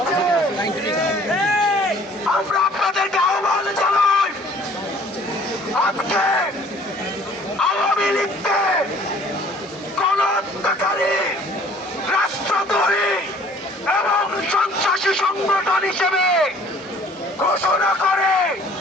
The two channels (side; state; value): both; normal; correlation 0.54